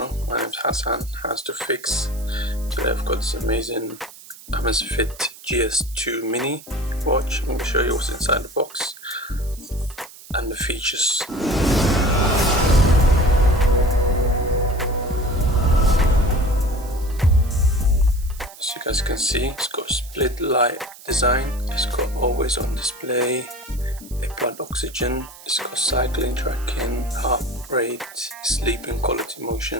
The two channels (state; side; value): noise; right; hiss, 19 dB below the sound